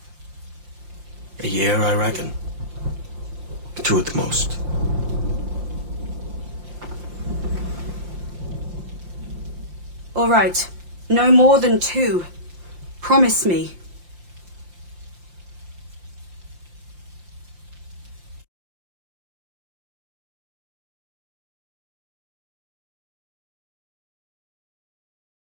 A year, I reckon. 2 at the most. All right. No more than 2. Promise me.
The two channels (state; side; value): late; left; 5.7 ms